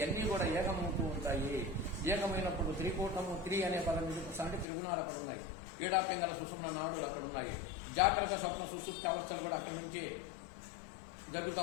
కూడా ఏకమవుతూ ఉంటాయి. ఏకమైనప్పుడు త్రికూటము, అనే పదం అంటే త్రిగుణాలు అక్కడ ఉన్నాయి. పీడాపింగల సుషుమ్న నాడులు అక్కడ ఉన్నాయి. జాగ్రత్త స్వప్న సుషుప్తి అవస్థలు కూడా అక్కడి నుంచే జరుగుతూ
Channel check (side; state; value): right; drops out; at 4.7 s